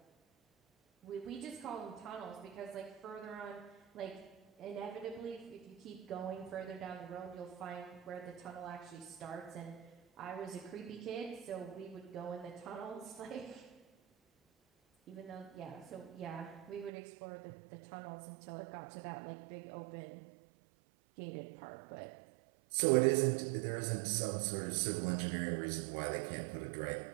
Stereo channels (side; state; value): left; drops out; at 16.9 s